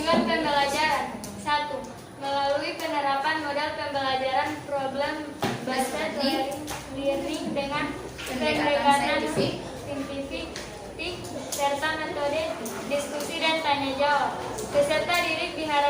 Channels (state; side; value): identical; both; correlation 1.00